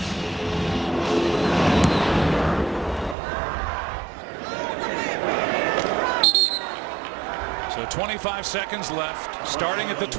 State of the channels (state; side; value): drops out; left; at 3.2 s